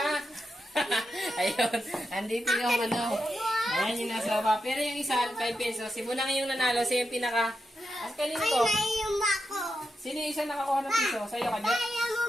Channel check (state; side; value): normal; both; correlation 0.87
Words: Ayun. Andito yung Ayan yung nasa baba. Pero yung isa, 5 pesos. Si Bunang yung nanalo. Siya yung pinaka... As kanino Ay, to? naiyung ako. Sino yung isa nakakuha ng piso? Sa'yo ka, Jet?